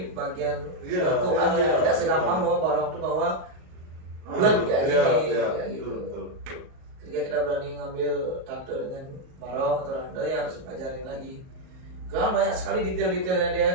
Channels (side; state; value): left; late; 38 ms